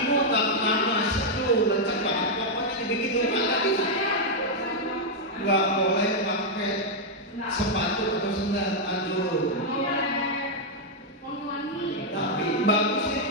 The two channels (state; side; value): normal; both; correlation -0.02